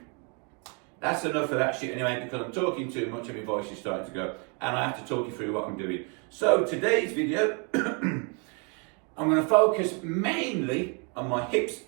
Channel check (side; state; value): left; quieter; 35.7 dB